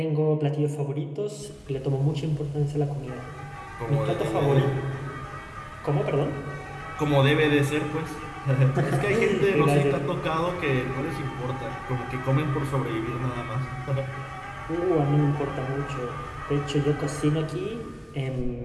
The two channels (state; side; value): identical; both; correlation 1.00